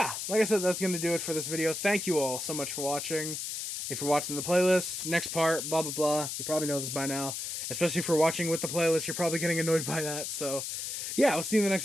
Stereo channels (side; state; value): left; noise; hiss, 5 dB below the sound